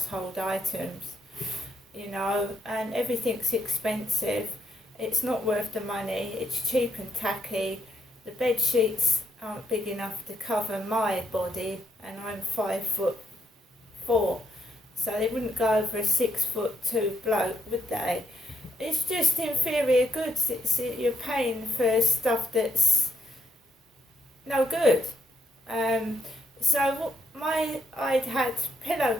items, and everything's expensive. It's not worth the money. It's cheap and tacky. The bed sheets aren't big enough to cover my body, and I'm 5'4", so they wouldn't go over a 6'2" bloke, would they? It's just inferior goods. You're paying for stuff that's no good. So I'd had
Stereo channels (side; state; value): both; normal; correlation 0.76